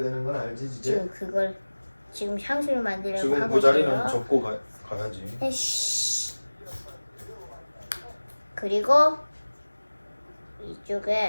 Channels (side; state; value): both; inverted; correlation -1.00